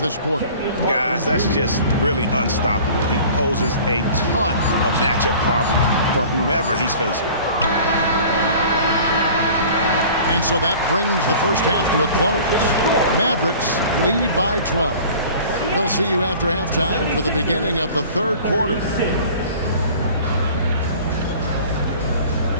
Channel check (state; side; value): inverted; both; correlation -0.45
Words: quarter. Guys, that's just really unstoppable. He poses a ton of matchup problems for whomever he's facing. And so that brings the first half to a close. Mavericks lead by 12. We'll see you after halftime for the beginning of the third quarter.